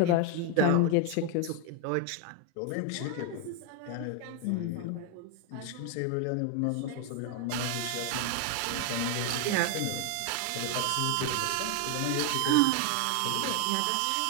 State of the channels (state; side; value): different; both; correlation 0.00